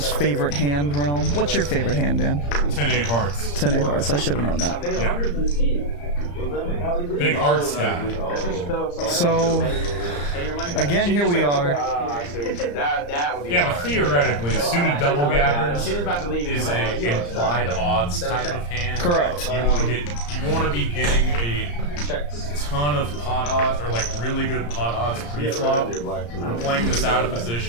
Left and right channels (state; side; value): late; right; 34 ms